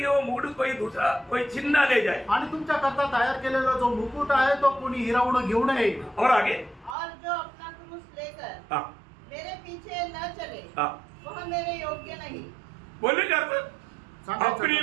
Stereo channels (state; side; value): drops out; left; at 7.0 s